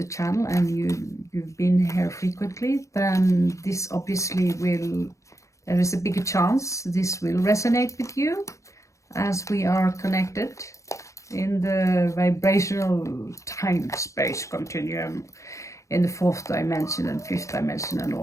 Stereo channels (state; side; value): late; right; 0.15 ms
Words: channel and you've been here frequently, then this obviously there is a bigger chance this will resonate with you, as we are connected in the vibrational time-space continuum in the 4th dimension and 5th dimension and